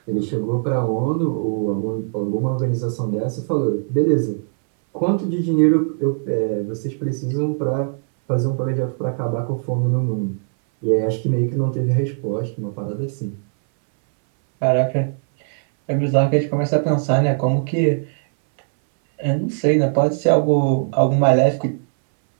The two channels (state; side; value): silent; left; 61 dB below the other